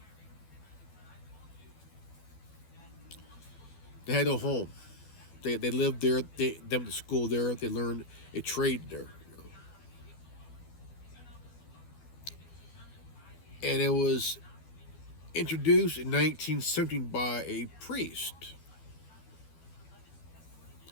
they had no home. They lived there. They went to school there. They learned a trade there. You know. And it was introduced in 1917 by a priest.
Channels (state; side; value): late; right; 12 ms